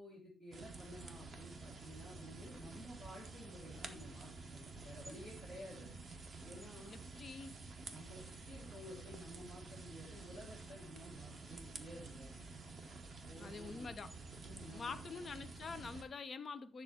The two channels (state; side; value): normal; both; correlation 0.77